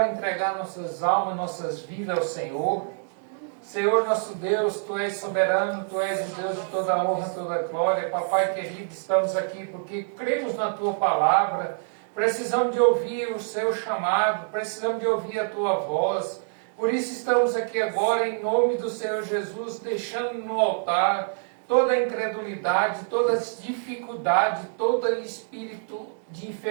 entregar nossas almas, nossas vidas ao Senhor. Senhor nosso Deus, Tu és soberano, Tu és o Deus de toda honra, toda glória. Papai querido, estamos aqui porque cremos na Tua palavra. Precisamos de ouvir o seu chamado, precisamos de ouvir a tua voz. Por isso estamos aqui agora em nome do Senhor Jesus, deixando no altar toda a incredulidade, todas as dificuldades, todo espírito de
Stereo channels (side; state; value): left; silent; digital silence